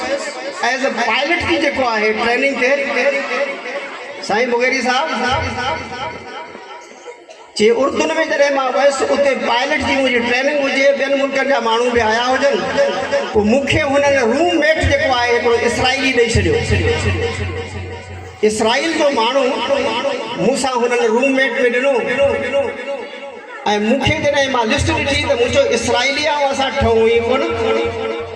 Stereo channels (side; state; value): both; identical; correlation 1.00